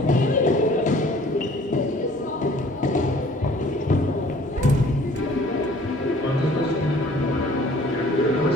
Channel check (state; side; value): normal; both; correlation 0.53